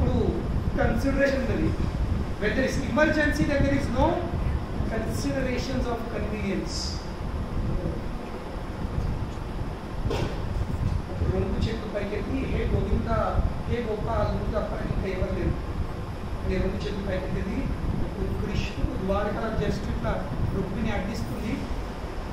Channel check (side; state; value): both; identical; correlation 1.00